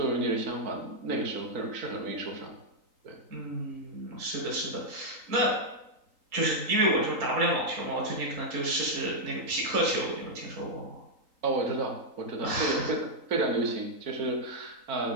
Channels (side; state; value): left; late; 3.8 ms